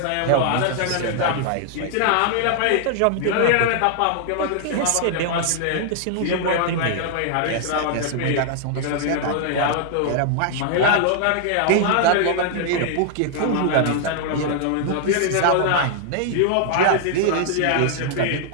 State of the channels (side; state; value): both; different; correlation 0.00